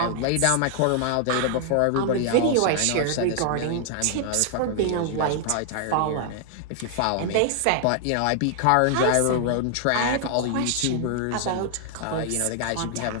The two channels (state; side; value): different; both; correlation 0.00